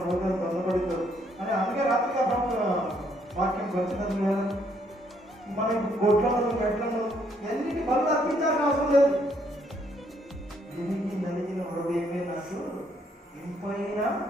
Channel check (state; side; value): normal; both; correlation 0.69